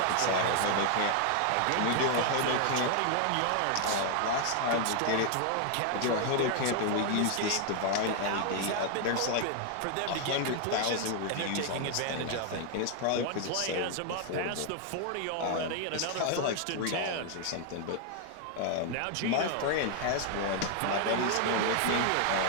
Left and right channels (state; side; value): different; both; correlation 0.00